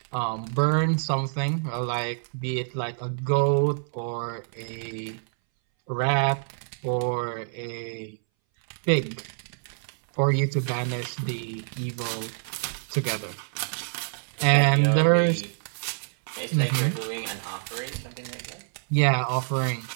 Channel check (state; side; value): silent; left; 60 dB below the other